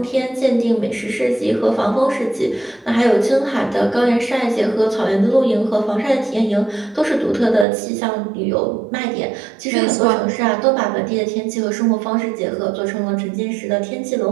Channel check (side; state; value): left; drops out; at 7.7 s